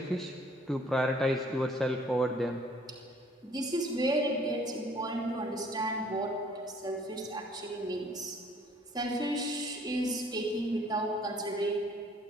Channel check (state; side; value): normal; both; correlation 0.58